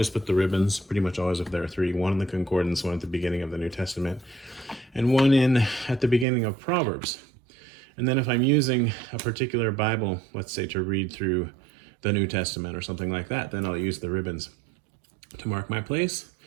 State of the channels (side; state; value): left; drops out; at 6.2 s